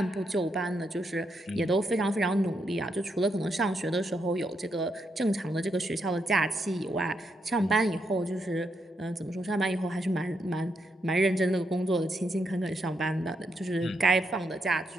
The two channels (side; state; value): both; normal; correlation 0.80